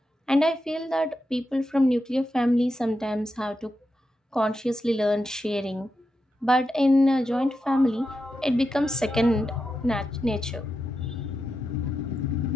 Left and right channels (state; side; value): normal; both; correlation 0.88